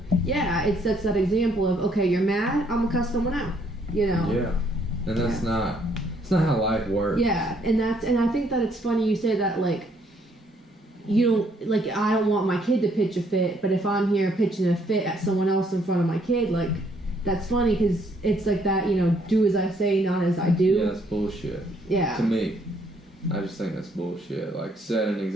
it sets that example of, okay, you're mad, I'm gonna cuss someone out. You know. Yeah. And that's not. It's not how life works. Yeah, and I think that it's funny you say that, like, you don't, like, I don't want my kid to pitch a fit, but if I'm here pitching a fit at someone else in front of my kid, like, that's funny because it's like that, you know, do as I say, not as I do. Yeah, that's bullshit. Yeah. To me, I just think that's bullshit. Like, set an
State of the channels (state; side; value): normal; both; correlation 0.68